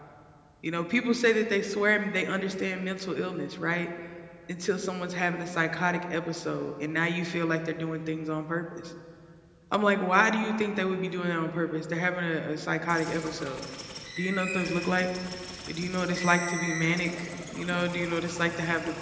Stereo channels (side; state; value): both; identical; correlation 1.00